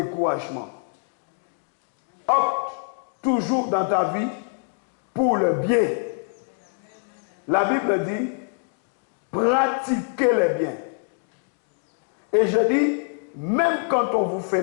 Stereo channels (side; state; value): right; silent; 59 dB below the other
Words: Opte toujours dans ta vie pour le bien. La Bible dit, pratiquez le bien. Et je dis, même quand on vous fait